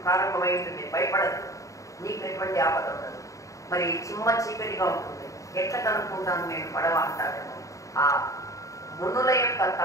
ప్రారంభమై ఉంటుంది. భయపడదు, నీకు ఎటువంటి ఆపద ఉండదు. మరి చిమ్మ చీకటిగా ఉంటుంది, ఎట్లా కనుక్కుంటాను నేను పడవ అంటారేమో. ఆ మునుల యొక్క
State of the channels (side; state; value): right; late; 0.16 ms